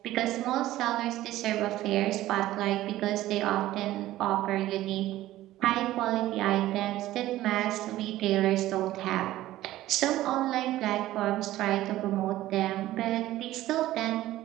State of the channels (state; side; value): quieter; left; 15.2 dB